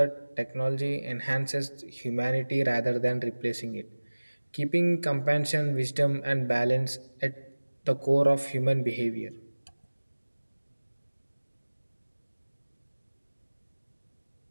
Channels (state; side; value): inverted; both; correlation -1.00